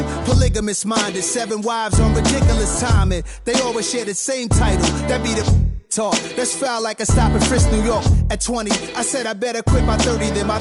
Polygamous minded, 7 wives on ridiculous timing. They always share the same title. That be the talk. That's foul like a stop in Frisk, New York. At 20, I said I better quit by 30 than my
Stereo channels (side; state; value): both; identical; correlation 1.00